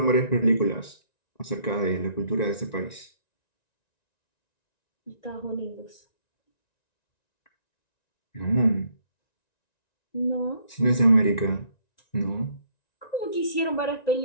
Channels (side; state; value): right; late; 1.9 ms